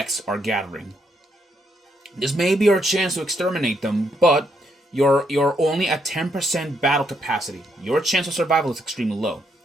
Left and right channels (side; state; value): both; normal; correlation 0.76